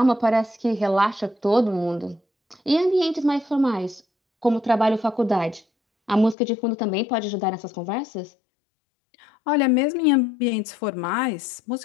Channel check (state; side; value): drops out; right; at 6.4 s